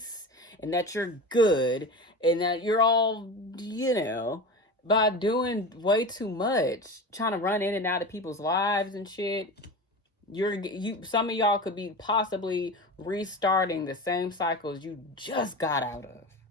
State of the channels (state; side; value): normal; both; correlation 0.28